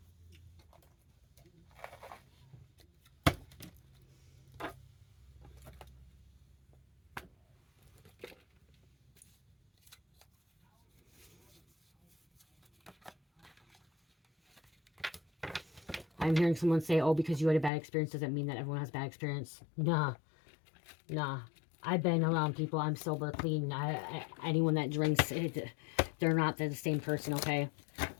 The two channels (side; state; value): right; drops out; at 17.7 s